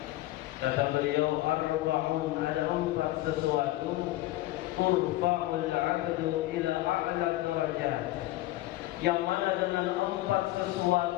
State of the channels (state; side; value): quieter; right; 17.0 dB